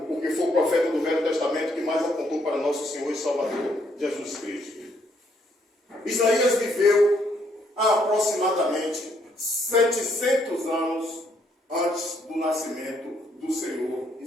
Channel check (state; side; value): normal; both; correlation 0.71